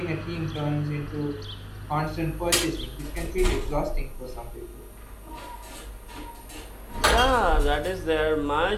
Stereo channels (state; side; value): identical; both; correlation 1.00